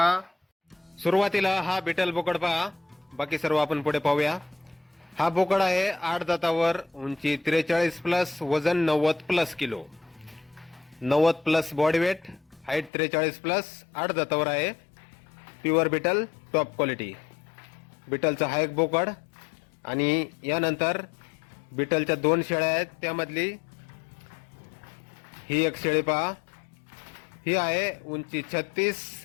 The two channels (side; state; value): right; drops out; at 12.9 s